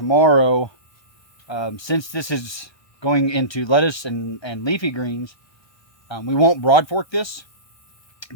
since this is going into lettuce and leafy greens, we won't broad fork this,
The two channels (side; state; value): right; late; 1.2 ms